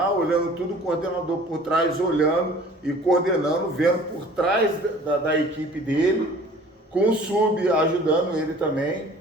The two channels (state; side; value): normal; both; correlation 0.48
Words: olhando tudo, o coordenador por trás, olhando e coordenando, vendo por trás da equipe dele, com o sub ajudando ele também.